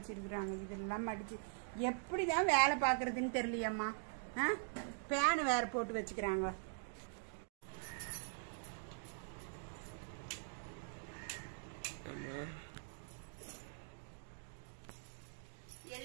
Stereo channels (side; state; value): left; silent; digital silence